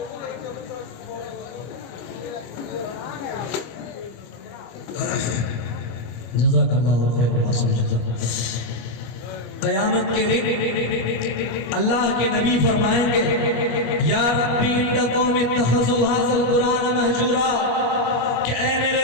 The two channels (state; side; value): late; right; 25 ms